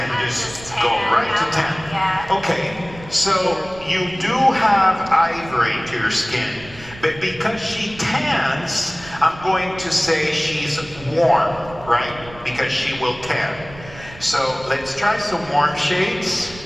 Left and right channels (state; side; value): noise; right; rumble, 18 dB below the sound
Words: Just tan, go right to tan. Yeah. Okay, so you do have ivory to your skin, but because she tans, I'm going to say she's warm, right? Because she will tan. So let's try some warm shades.